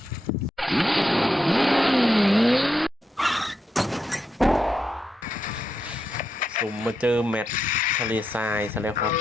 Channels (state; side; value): normal; both; correlation 0.84